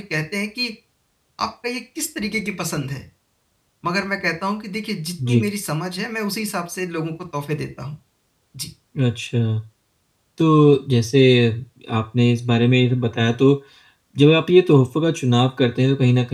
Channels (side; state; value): both; identical; correlation 1.00